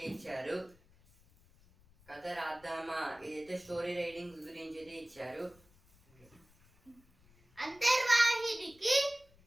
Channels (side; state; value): left; noise; rumble, 29 dB below the sound